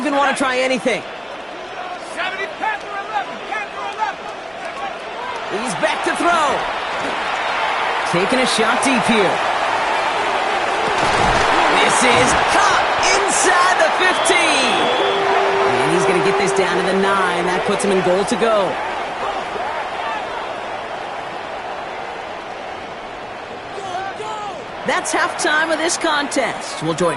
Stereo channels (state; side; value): identical; both; correlation 1.00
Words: want to try anything. 70, Panther 11, Panther 11. He's back to throw. Taking a shot deep here. This is caught inside the 15. And he's going to get this down to the 9. That puts him in goal to go. That's halftime of this contest. We'll